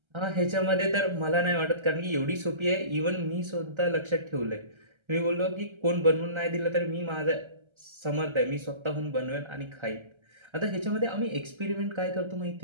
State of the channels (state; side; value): late; left; 1.3 ms